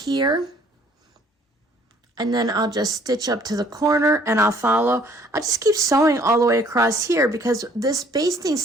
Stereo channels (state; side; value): normal; both; correlation 0.59